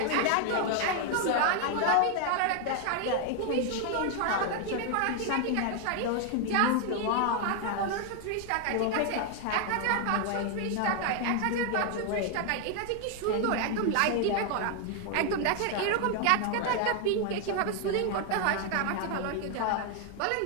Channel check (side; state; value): both; different; correlation 0.00